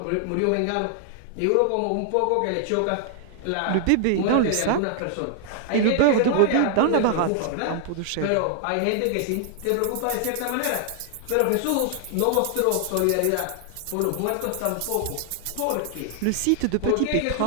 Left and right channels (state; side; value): different; both; correlation 0.00